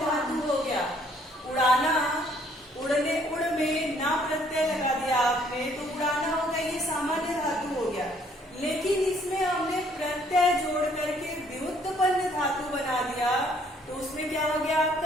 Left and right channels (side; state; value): both; normal; correlation 0.63